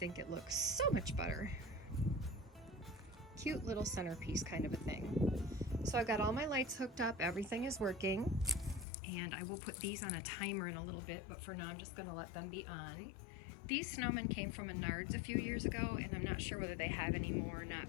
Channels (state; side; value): drops out; right; at 8.8 s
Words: it looks so much better. Cute little centerpiece kind of a thing. So I've got all my lights hooked up, everything is working, and I will put these on a timer in a little bit, but for now I'm just going to let them be on. These snowmen came from Menards a few years ago, and I'm not sure whether they have any more or not,